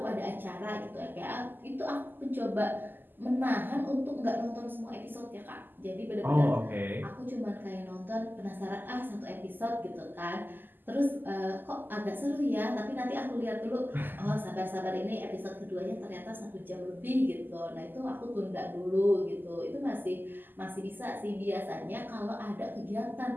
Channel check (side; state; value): left; late; 0.091 ms